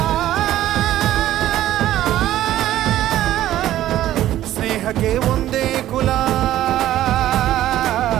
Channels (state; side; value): quieter; left; 13.4 dB